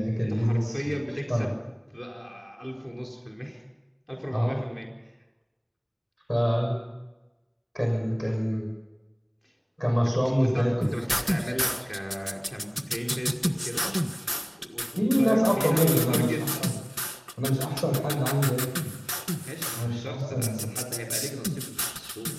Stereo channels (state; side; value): identical; both; correlation 1.00